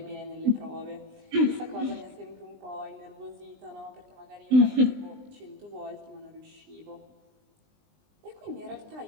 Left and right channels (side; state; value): left; late; 20 ms